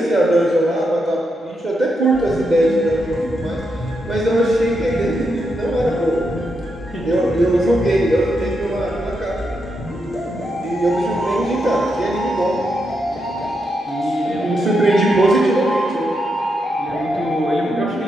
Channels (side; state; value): both; normal; correlation 0.83